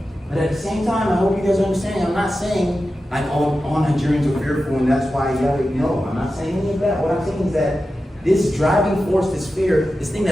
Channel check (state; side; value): normal; both; correlation 0.92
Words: But at the same time, I hope you guys understand, I'm not saying like all Nigerians are fearful and that's why no, I'm not saying any of that. What I'm saying is that this driving force, this fear, this thing